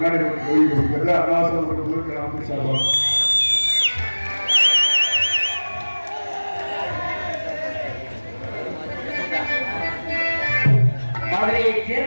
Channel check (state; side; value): inverted; both; correlation -1.00